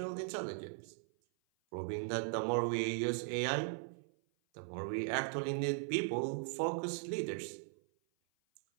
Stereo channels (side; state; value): left; silent; 52 dB below the other